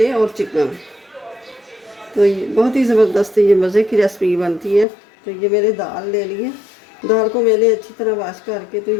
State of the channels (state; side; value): drops out; right; at 4.9 s